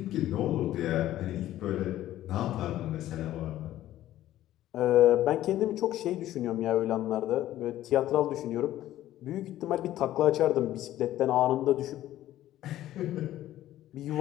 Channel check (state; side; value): quieter; right; 13.7 dB